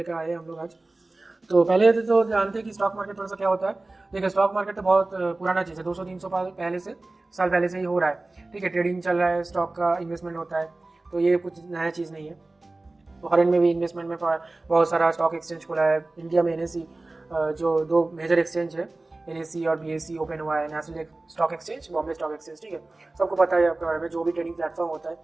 आए हम लोग आज। तो पहले तो जानते हैं कि स्टॉक मार्केट थोड़ा सा क्या होता है। देखिए, स्टॉक मार्केट तो बहुत पुराना चीज़ है, 200-300 साल पहले से ही हो रहा है। ठीक है, ट्रेडिंग चल रहा है, स्टॉक का इन्वेस्टमेंट होता है, तो ये कुछ नया चीज़ नहीं है। फॉरेन में भी इन्वेस्टमेंट में बहुत सारा स्टॉक एक्सचेंज खुला है। इंडिया में NSE जो दो मेजर एक्सचेंज है, NSE और BSE ओपन हुआ है, national stock exchange, Bombay stock exchange. ठीक है, सबको पता है आपके बारे में। जो भी ट्रेडिंग प्लेटफॉर्म होता है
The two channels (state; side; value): quieter; left; 3.1 dB